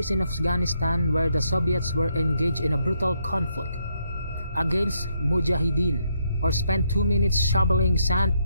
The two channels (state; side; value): inverted; both; correlation -0.76